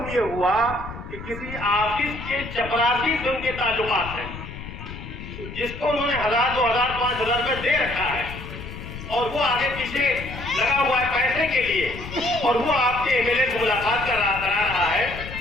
یہ ہوا کہ کسی آفس کے چپراسی سے ان کے تعلقات ہیں، جس کو انہوں نے 1000 2000 5000 روپے دے رکھا ہے، اور وہ آگے پیچھے لگا ہوا ہے پیسے کے لیے، اور وہ آپ کے MLA سے ملاقات کرا رہا ہے،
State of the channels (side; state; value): left; noise; rumble, 11 dB below the sound